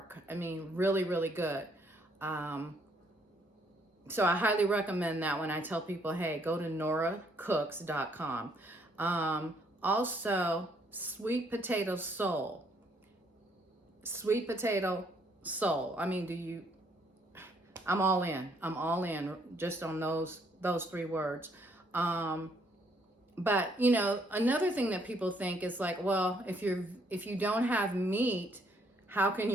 I mean, really, really good. So I highly recommend that when I tell people, hey, go to noracooks.com. Also, sweet potato soul. Sweet potato soul. I mean, I'm all in. I'm all in just on those three words. But another thing that people think is like, well, if you don't have meat, how can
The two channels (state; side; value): normal; both; correlation 0.68